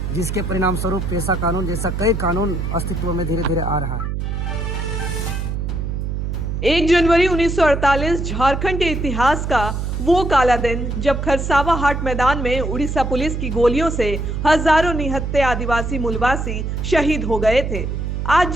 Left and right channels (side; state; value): right; noise; hum, 3 dB below the sound